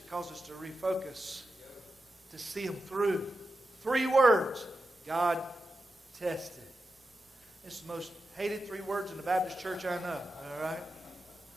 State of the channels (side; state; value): both; normal; correlation 0.90